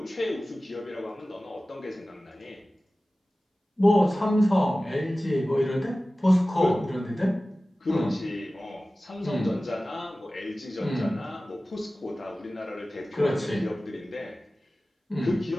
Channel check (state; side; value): normal; both; correlation 0.96